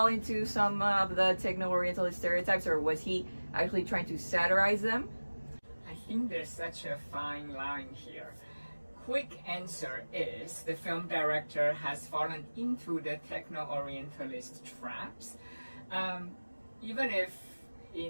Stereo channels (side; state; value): both; inverted; correlation -1.00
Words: into some of the Techno-Orientalist stereotypes, or was he actually trying to satirize them? I think there's such a fine line here. Quick answer is the film director has fallen into the Techno-Orientalist traps. Even if